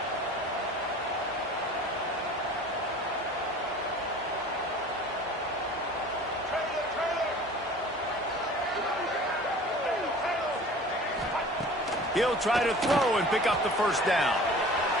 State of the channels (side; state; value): both; normal; correlation 0.43